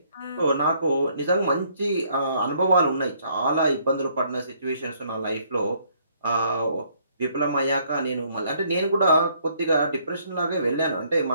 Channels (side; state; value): both; inverted; correlation -0.66